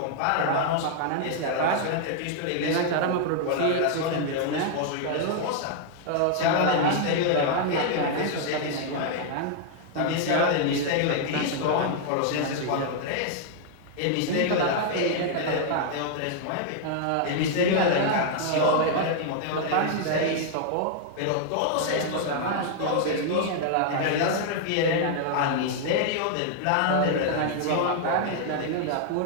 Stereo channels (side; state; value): both; different; correlation -0.01